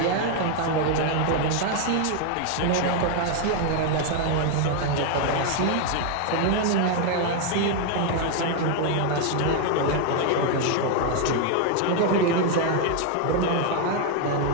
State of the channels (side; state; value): both; different; correlation 0.01